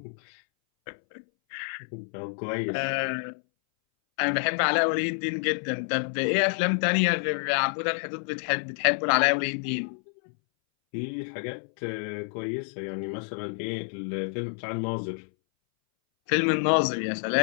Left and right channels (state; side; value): silent; right; 59 dB below the other